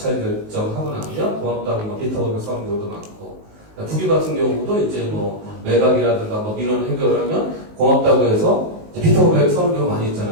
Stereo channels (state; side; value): late; left; 19 ms